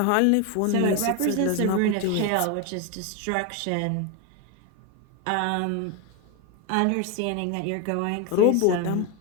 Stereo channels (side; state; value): both; different; correlation 0.02